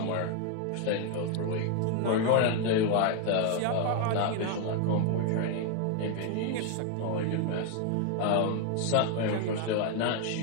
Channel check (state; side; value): different; both; correlation 0.01